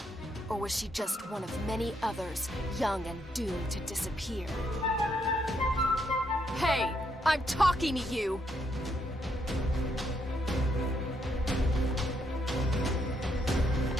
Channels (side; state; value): both; normal; correlation 0.75